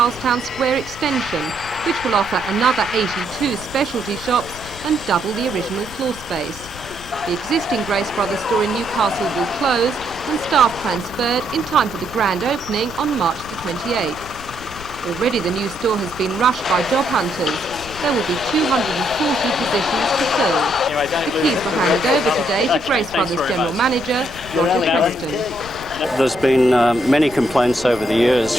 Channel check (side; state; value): left; noise; rumble, 17 dB below the sound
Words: Square extension, which will offer another 82 specialty shops and double the original floor space. The existing Grace Brothers store in Newcastle will close and staff transferred in time for the grand opening on March the 28th. Already the new store has been rushed by job hunters. There will be 240 positions to fill. The keys were handed over today to Grace Brothers General Manager Roger Preston. There's been many complaints over the years